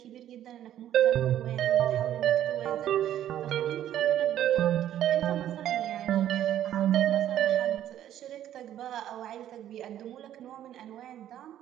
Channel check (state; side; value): quieter; left; 11.5 dB